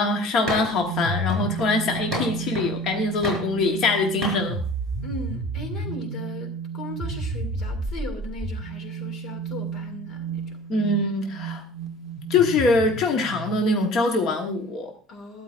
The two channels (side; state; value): both; normal; correlation 0.42